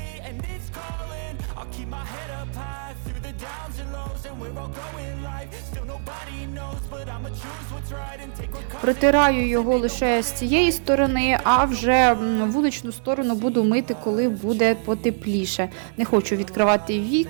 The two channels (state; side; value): silent; left; digital silence